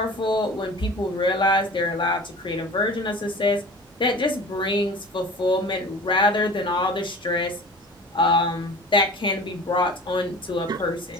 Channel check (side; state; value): both; normal; correlation 0.39